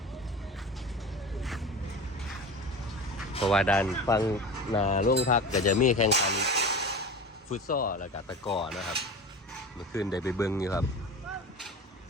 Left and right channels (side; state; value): both; normal; correlation 0.31